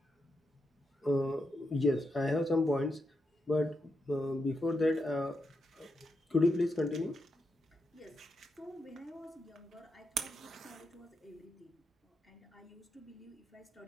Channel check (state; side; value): normal; both; correlation 0.85